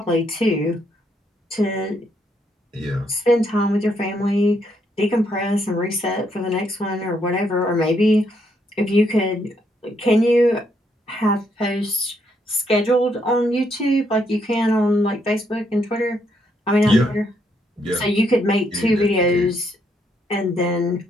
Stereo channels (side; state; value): both; normal; correlation 0.74